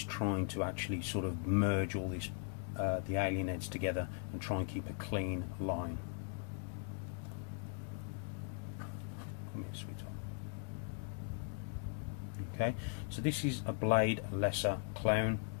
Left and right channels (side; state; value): right; silent; 52 dB below the other